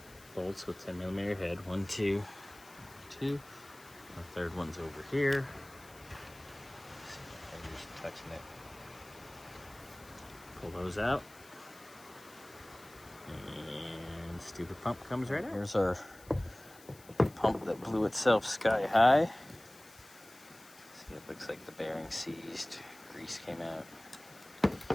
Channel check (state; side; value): noise; left; hiss, 22 dB below the sound